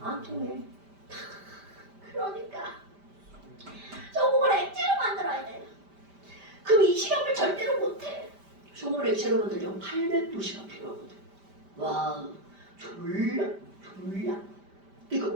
안 통해. 그러니까 소금을 액체로 만들어야 돼. 그럼 이 실험을 절대로 못해. 소금을 액체로 만들려면 800도씨가 필요하거든. 와 졸라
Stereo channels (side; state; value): left; late; 5.1 ms